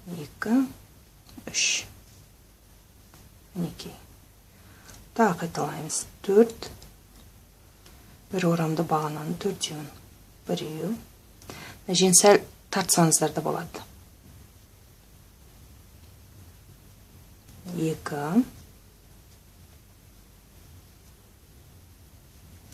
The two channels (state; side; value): identical; both; correlation 1.00